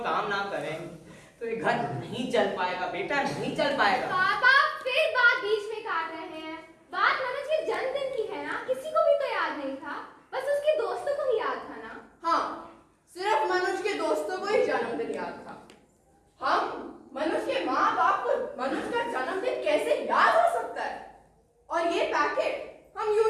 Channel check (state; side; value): identical; both; correlation 1.00